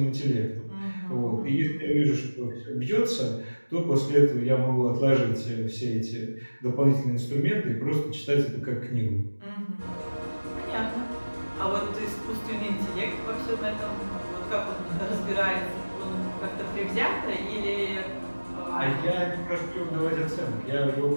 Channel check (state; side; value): inverted; both; correlation -1.00